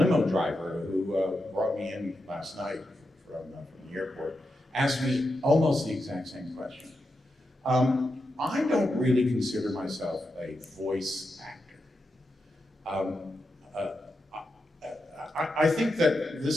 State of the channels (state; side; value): normal; both; correlation 0.87